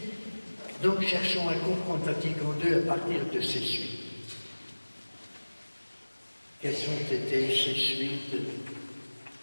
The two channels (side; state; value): both; inverted; correlation -1.00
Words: donc, cherchons à comprendre Vatican II à partir de ces suites. Quelles ont été ces suites